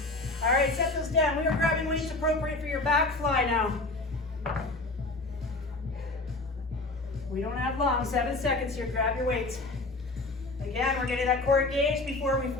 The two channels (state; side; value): quieter; right; 3.1 dB